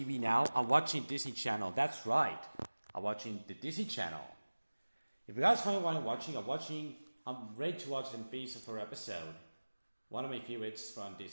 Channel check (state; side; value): inverted; both; correlation -1.00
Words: now, I'm watching Disney Channel. That's right. I'm watching the Disney Channel. If you guys wondering what I'm ready to watch the Phineas and Ferb episode. One of my favorites from